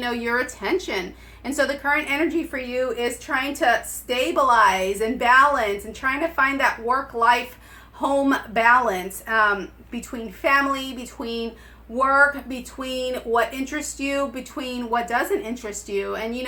know, your attention. And so the current energy for you is trying to stabilize and balance and trying to find that work-life home balance between family, between work, between what interests you, between what doesn't interest you, and, you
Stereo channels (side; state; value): both; identical; correlation 1.00